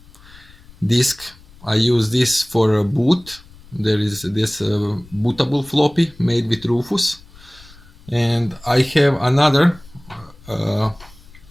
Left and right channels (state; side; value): noise; left; rumble, 24 dB below the sound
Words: disk. I use this for a boot. There is this bootable floppy made with Rufus, and I have another